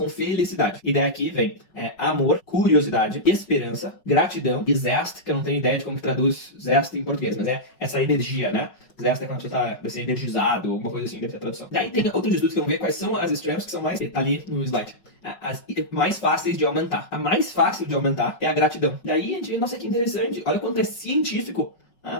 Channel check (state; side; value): late; right; 5.4 ms